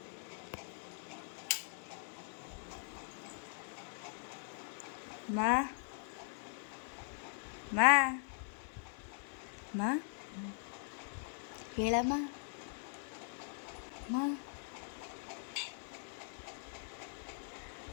ಮಾ ಹೇಳಮ್ಮ, ಮಾ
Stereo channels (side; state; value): right; silent; 50 dB below the other